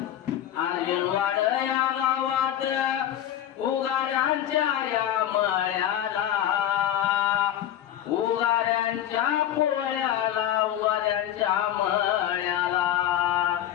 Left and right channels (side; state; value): right; quieter; 11.4 dB